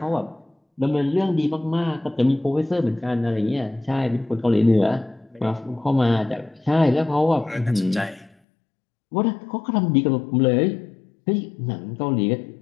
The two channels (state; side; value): drops out; right; at 8.3 s